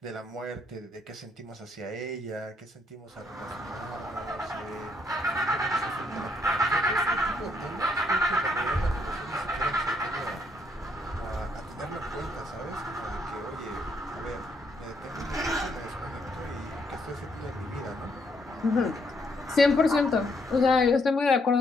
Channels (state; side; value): normal; both; correlation 0.72